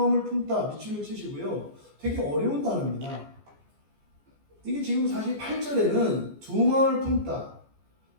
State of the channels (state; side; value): late; left; 14 ms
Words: 품다 밑줄을 치시고요. 되게 어려운 단어입니다. 이게 지금 사실 8절에는 두 마음을 품다,